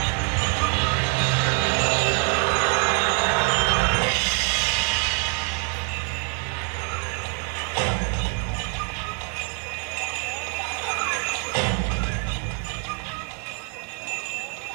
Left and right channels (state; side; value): quieter; left; 37.1 dB